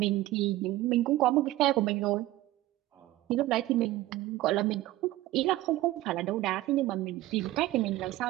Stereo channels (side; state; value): left; quieter; 16.4 dB